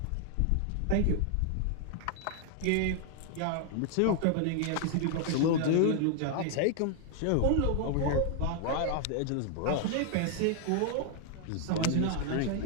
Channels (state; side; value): different; both; correlation 0.00